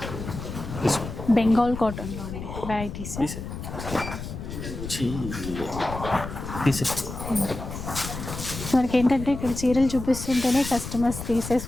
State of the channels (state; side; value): noise; left; rumble, 8 dB below the sound